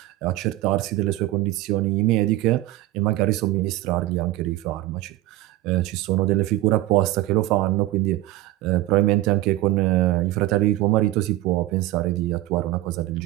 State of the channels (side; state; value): left; quieter; 16.6 dB